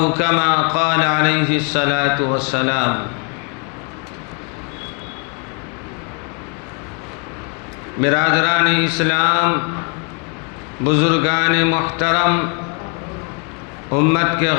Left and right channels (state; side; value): quieter; right; 33.5 dB